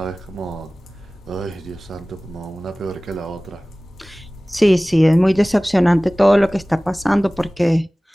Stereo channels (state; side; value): normal; both; correlation 0.98